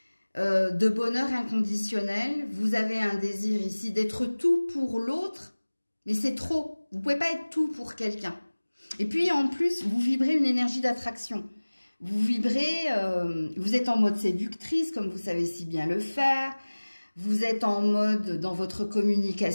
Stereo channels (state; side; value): inverted; both; correlation -1.00